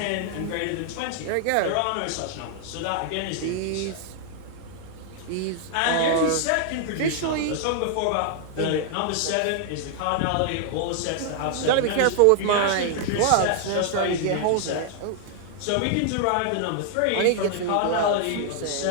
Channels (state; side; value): different; both; correlation -0.01